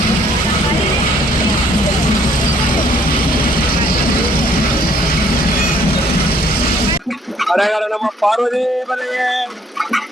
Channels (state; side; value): normal; both; correlation 0.63